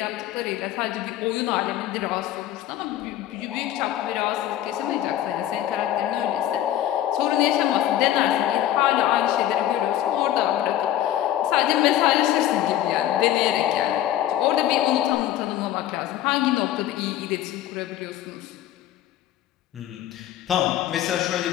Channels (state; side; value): quieter; right; 12.5 dB